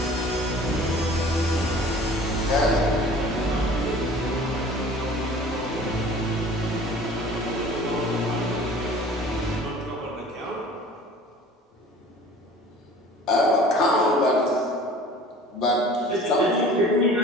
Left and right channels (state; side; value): normal; both; correlation 0.46